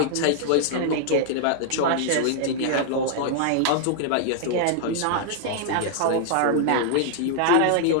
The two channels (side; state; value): both; different; correlation -0.01